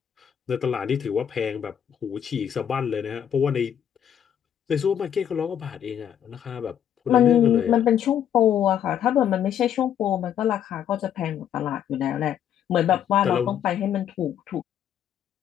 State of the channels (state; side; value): quieter; right; 9.5 dB